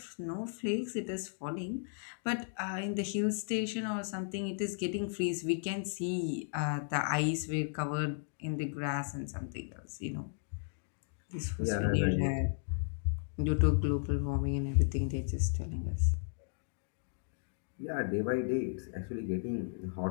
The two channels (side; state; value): right; silent; digital silence